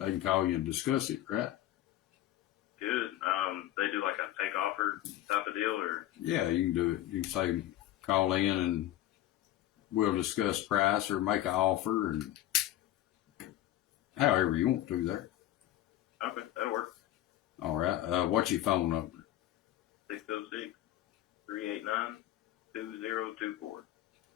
can call you and discuss it, right? Good. They do like a take offer type of deal, or Yeah, you can do it. You can say, call in and we'll discuss price or make an offer, and however you want to there. okay, that'll work. All right. What's your phone number? 606-389-2024.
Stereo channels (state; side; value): quieter; right; 13.5 dB